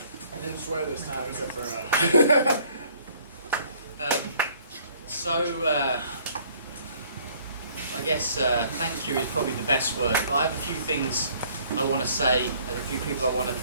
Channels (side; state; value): both; inverted; correlation -0.59